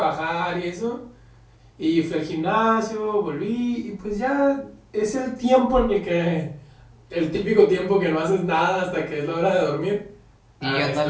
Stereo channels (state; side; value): identical; both; correlation 1.00